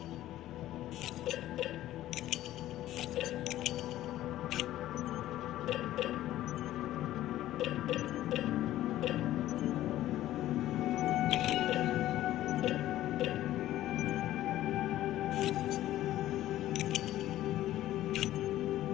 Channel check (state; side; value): quieter; right; 14.1 dB